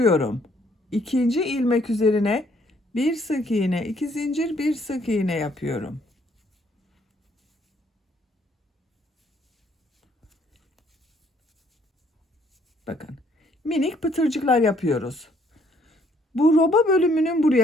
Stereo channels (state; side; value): normal; both; correlation 0.65